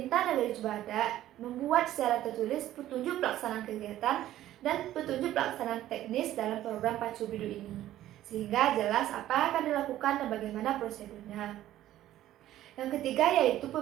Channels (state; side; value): quieter; left; 13.5 dB